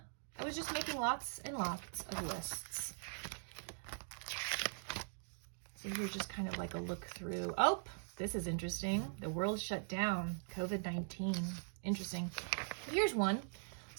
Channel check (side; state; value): left; silent; digital silence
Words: was just making lots and lots of lists. So here's just kind of like a look through. Oh, this is interesting. The world shut down. COVID-19. Interesting. Here's one.